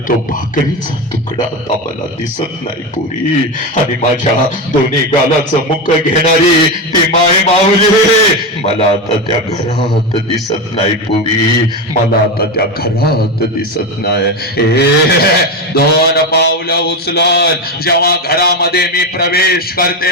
तो भाकरीचा तुकडा आता मला दिसत नाही पुरी. आणि माझ्या दोन्ही गालाचं मुख घेणारी ती माय माऊली मला आता त्या घरात दिसत नाही पुरी, मला आता त्या घरात दिसत नाही. 2 पावलं उचलून जेव्हा घरामध्ये मी प्रवेश करते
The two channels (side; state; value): both; normal; correlation 0.16